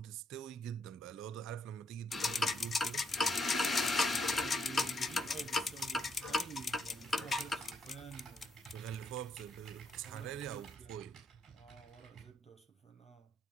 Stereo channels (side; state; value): both; normal; correlation 0.75